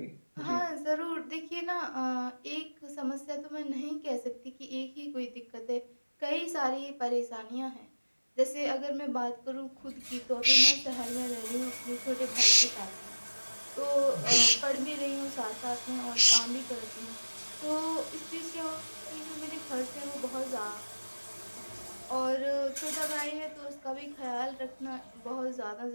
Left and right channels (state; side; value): inverted; both; correlation -1.00